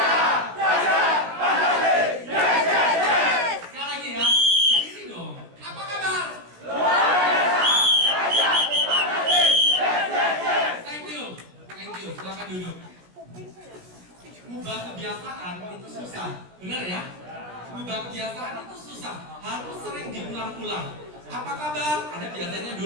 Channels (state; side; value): late; left; 17 ms